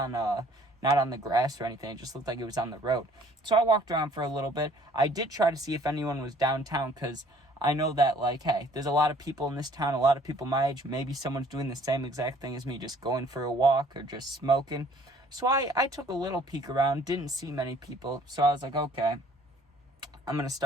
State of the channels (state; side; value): normal; both; correlation 0.57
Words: the grass or anything. It just looked like it was on the road. So I walked around for a little bit. I did try to see if anyone was downtown, because I know that, like, hey, there's a lot of people in this town, a lot of people my age. Maybe someone's doing the same exact thing as me, just going for a walk or just smoking. So I took a little peek around, didn't see many people. So I was like, okay, I'm going to